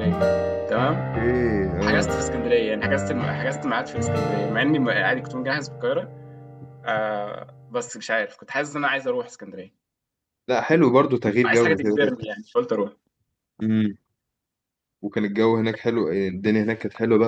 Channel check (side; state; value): both; identical; correlation 1.00